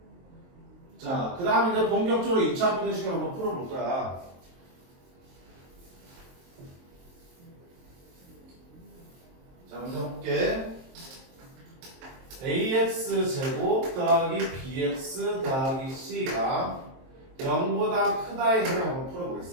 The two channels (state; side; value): late; left; 23 ms